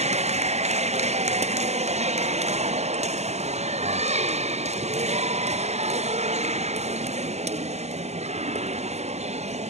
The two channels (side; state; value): left; late; 0.32 ms